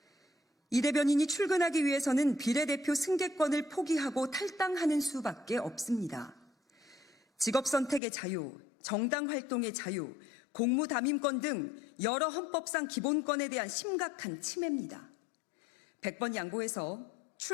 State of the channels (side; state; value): right; drops out; at 8.0 s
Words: 이 대변인이 출근하기 위해서는 비례대표 승계권을 포기하고 탈당하는 수밖에 없습니다. 직업 선택의 자유, 정당 활동의 자유, 공무 담임권 등 여러 헌법상 기본권에 대한 심각한 침해입니다. 100번 양보해서